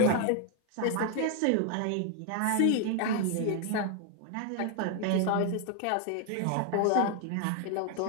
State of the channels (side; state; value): both; different; correlation 0.00